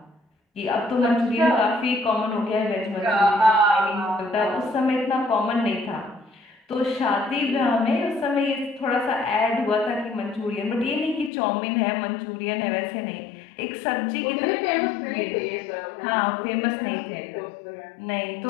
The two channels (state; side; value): drops out; right; at 11.3 s